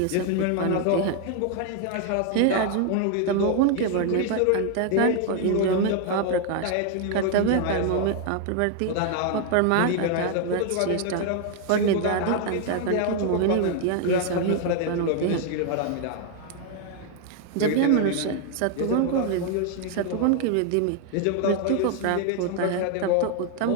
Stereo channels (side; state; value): both; different; correlation 0.00